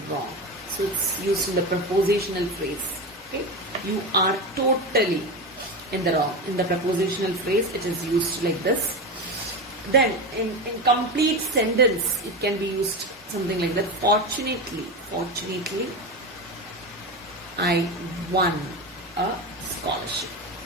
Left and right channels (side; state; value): both; normal; correlation 0.20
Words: wrong. So it's used in the prepositional phrase. Okay, you are totally in the wrong. In the prepositional phrase, it is used like this. Then in complete sentence, it can be used something like that. Fortunately, I won a scholarship.